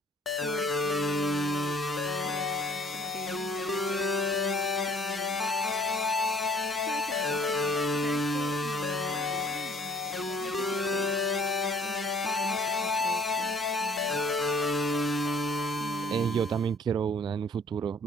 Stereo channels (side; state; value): both; normal; correlation 0.56